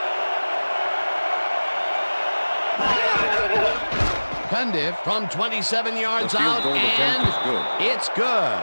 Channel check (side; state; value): both; inverted; correlation -1.00